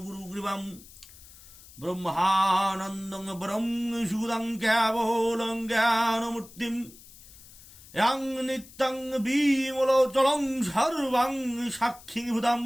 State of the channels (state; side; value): noise; left; hiss, 21 dB below the sound